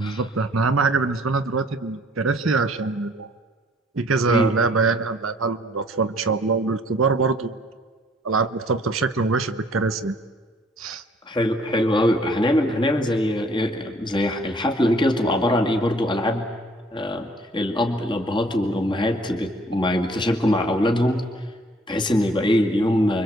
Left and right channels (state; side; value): normal; both; correlation 0.59